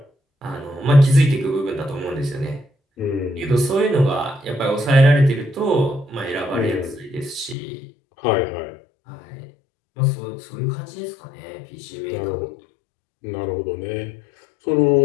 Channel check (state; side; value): drops out; right; at 7.6 s